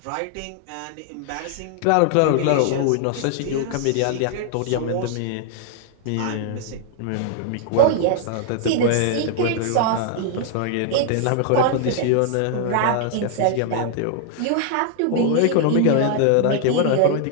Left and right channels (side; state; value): both; different; correlation 0.00